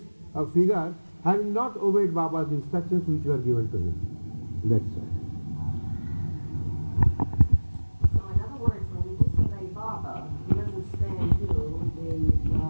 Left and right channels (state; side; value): inverted; both; correlation -1.00